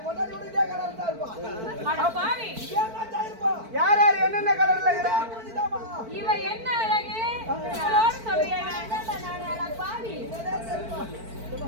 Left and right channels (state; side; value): late; left; 4.5 ms